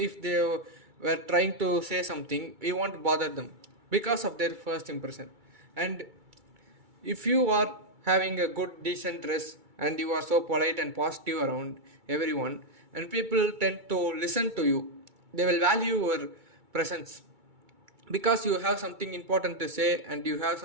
they were trying to say something, we won't bother them because of their first impression. And if you are having a good decent dress and you are so polite and positive around everyone, and people tend to listen to you, they will value your presence because you have something important to say and you have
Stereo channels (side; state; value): left; late; 2.3 ms